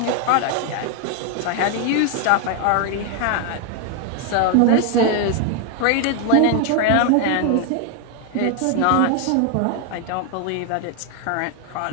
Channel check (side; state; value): both; different; correlation 0.00